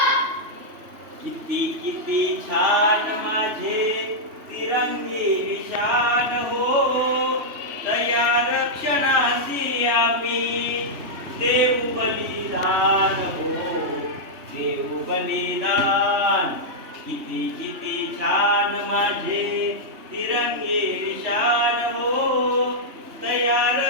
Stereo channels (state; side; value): late; left; 3.1 ms